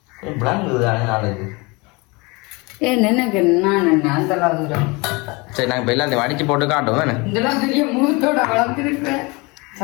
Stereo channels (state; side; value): quieter; right; 26.4 dB